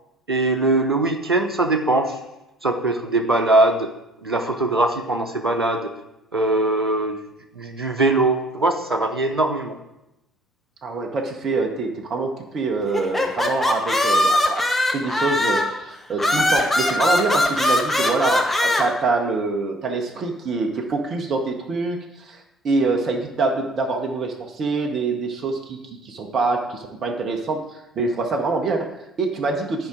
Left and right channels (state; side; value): normal; both; correlation 0.57